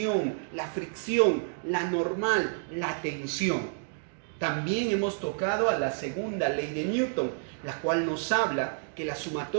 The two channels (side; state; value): left; silent; digital silence